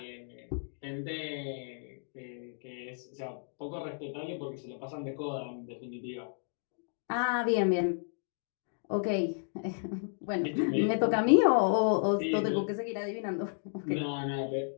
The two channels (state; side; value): silent; right; digital silence